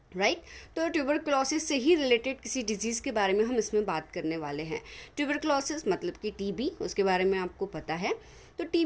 राइट। तो ट्यूबरकुलोसिस से ही रिलेटेड किसी डिजीज़ के बारे में हम इसमें बात करने वाले हैं। ट्यूबरकुलोसिस मतलब कि टीबी, उसके बारे में आपको पता है। तो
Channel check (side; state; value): both; identical; correlation 1.00